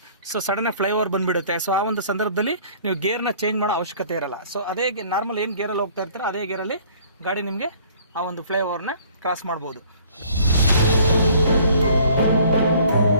ಸೊ ಸಡನ್ನಾಗಿ ಫ್ಲೈಓವರ್ ಬಂದುಬಿಡುತ್ತೆ. ಸೊ ಆ ಒಂದು ಸಂದರ್ಭದಲ್ಲಿ ನೀವು ಗೇರ್ನ ಚೇಂಜ್ ಮಾಡೋ ಅವಶ್ಯಕತೆ ಇರಲ್ಲ. ಸೊ ಅದೇ ನಾರ್ಮಲ್ ಏನು ಗೇರಲ್ಲಿ ಹೋಗ್ತಾ ಇರ್ತೀರೋ ಅದೇ ಗೇರಲ್ಲಿ ಗಾಡಿ ನಿಮಗೆ ಆ ಒಂದು ಫ್ಲೈಓವರ್ನ ಕ್ರಾಸ್ ಮಾಡ್ಬೋದು.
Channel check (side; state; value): both; inverted; correlation -0.55